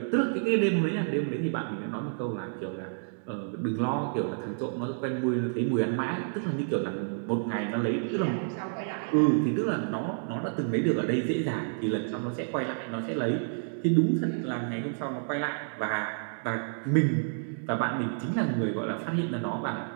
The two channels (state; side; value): silent; left; digital silence